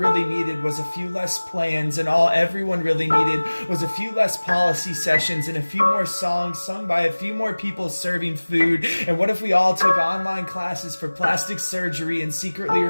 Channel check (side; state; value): both; inverted; correlation -1.00